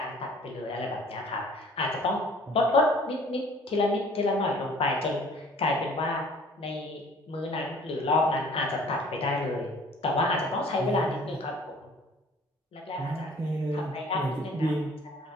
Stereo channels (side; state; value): both; normal; correlation 0.52